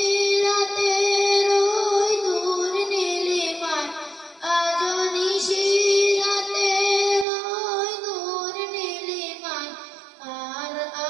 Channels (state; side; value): drops out; left; at 7.2 s